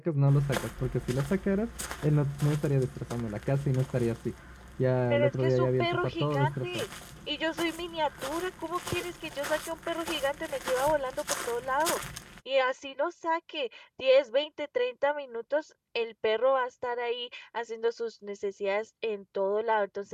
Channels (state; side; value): identical; both; correlation 1.00